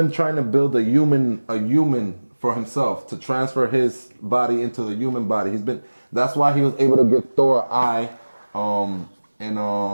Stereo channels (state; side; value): inverted; both; correlation -1.00